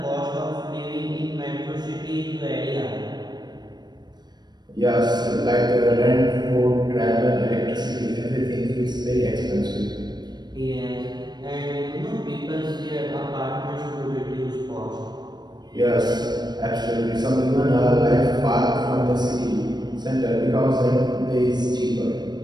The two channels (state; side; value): late; left; 0.20 ms